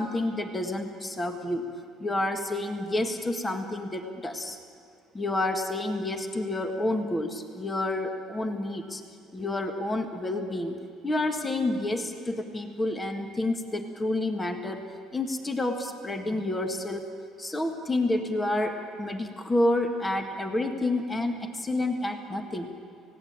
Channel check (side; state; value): both; normal; correlation 0.80